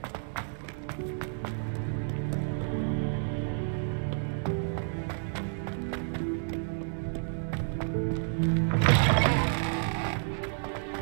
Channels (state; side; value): silent; left; digital silence